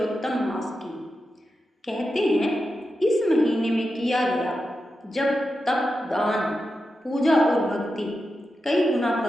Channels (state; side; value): normal; both; correlation 0.90